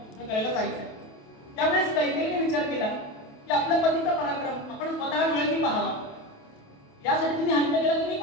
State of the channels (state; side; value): late; right; 28 ms